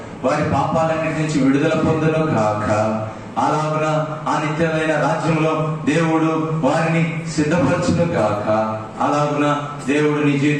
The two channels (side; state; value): both; identical; correlation 1.00